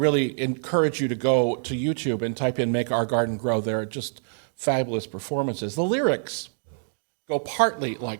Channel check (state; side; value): silent; left; digital silence